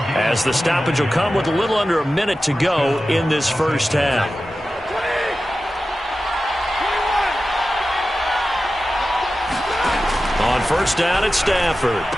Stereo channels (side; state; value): both; normal; correlation 0.94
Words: as the stoppage will come with a little under a minute to go in this first half. On first down, it's Stafford.